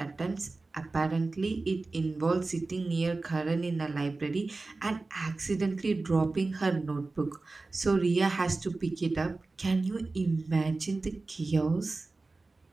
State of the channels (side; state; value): left; quieter; 3.5 dB